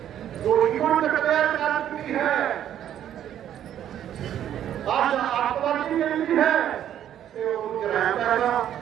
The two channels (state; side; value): quieter; left; 10.6 dB